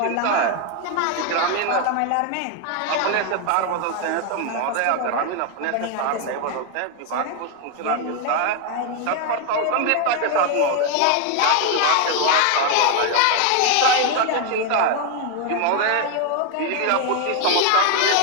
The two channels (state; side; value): different; both; correlation 0.01